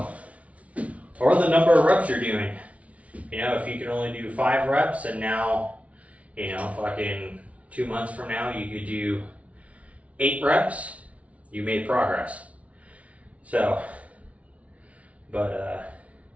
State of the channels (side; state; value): left; late; 0.065 ms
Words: or the number of reps you're doing. You know, if you can only do 5 reps and now, you know, fucking 2 months from now you could do 8 reps, you made progress. So, but